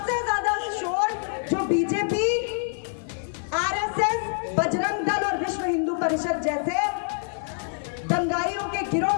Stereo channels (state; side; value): silent; right; 61 dB below the other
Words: ज्यादा शोर जो बीजेपी, आरएसएस, बजरंग दल और विश्व हिंदू परिषद जैसे दंगाइयों के गिरोह